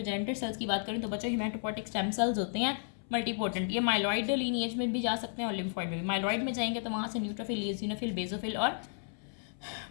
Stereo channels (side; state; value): right; silent; 56 dB below the other